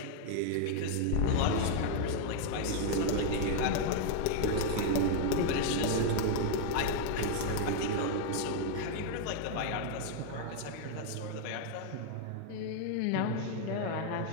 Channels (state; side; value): different; both; correlation 0.00